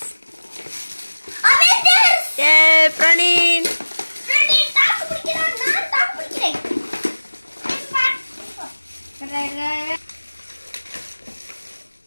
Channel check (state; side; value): inverted; both; correlation -1.00